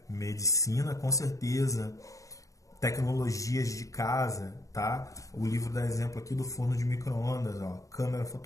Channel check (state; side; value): late; right; 0.16 ms